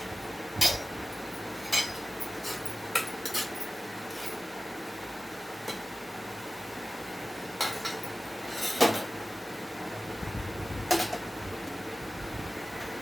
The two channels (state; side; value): normal; both; correlation 0.96